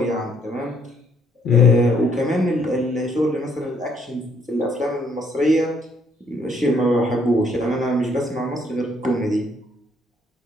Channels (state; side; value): normal; both; correlation 0.68